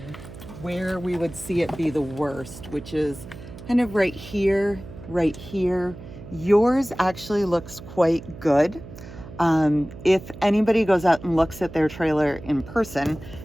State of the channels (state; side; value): noise; right; hum, 15 dB below the sound